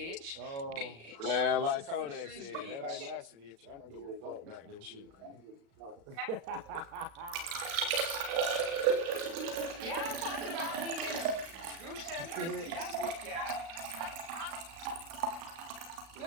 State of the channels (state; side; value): late; left; 36 ms